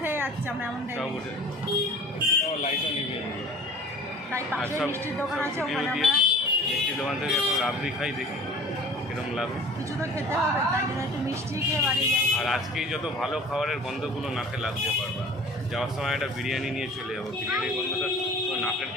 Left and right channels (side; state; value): both; normal; correlation 0.45